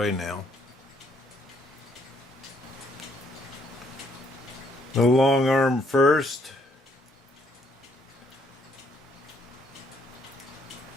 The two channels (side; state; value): both; normal; correlation 0.69